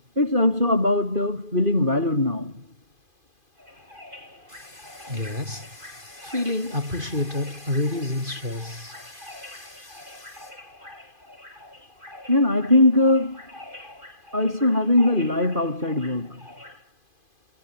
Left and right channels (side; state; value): left; late; 2.5 ms